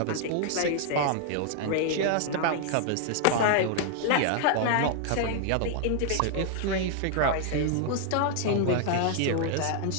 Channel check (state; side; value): different; both; correlation 0.00